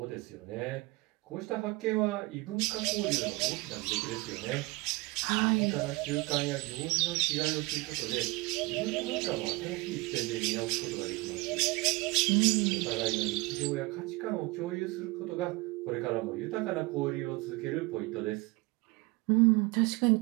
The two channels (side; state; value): left; quieter; 23.6 dB